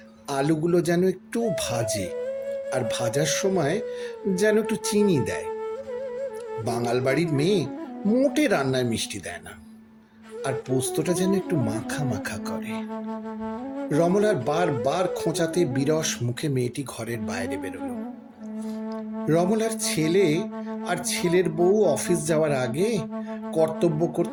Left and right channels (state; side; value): identical; both; correlation 1.00